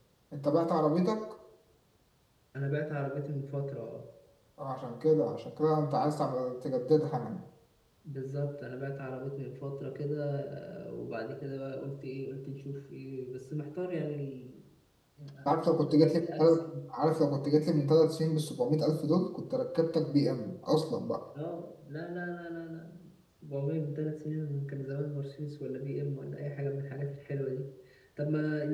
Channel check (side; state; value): both; identical; correlation 1.00